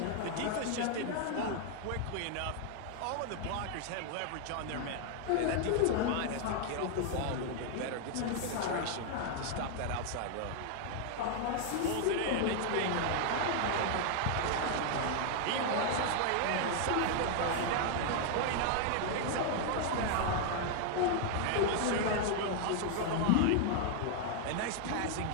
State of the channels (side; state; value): both; different; correlation 0.00